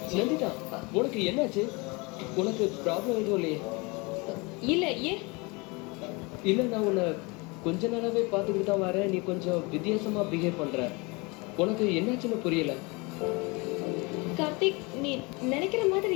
நந்திதா, உனக்கு என்னாச்சு? உனக்கு ப்ராப்ளம் எதுவும் இல்லையே? இல்ல ஏன்? இல்ல நான் உன்னை கொஞ்ச நாளாவே பார்த்துக்கிட்டு தான் வரேன். நீ கொஞ்சம் வித்தியாசமா பிஹேவ் பண்ற. உனக்கு என்னாச்சுன்னு புரியல. கார்த்திக், நீ நினைக்கிற மாதிரி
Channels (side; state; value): right; quieter; 27.2 dB